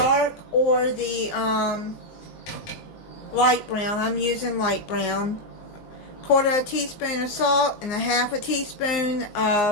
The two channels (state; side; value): late; right; 19 ms